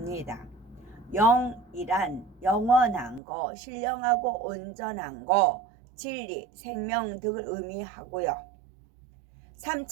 영이란 영원한 거, 신령하고 온전한 거, 진리, 생명 등을 의미하고요.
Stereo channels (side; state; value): left; drops out; at 3.2 s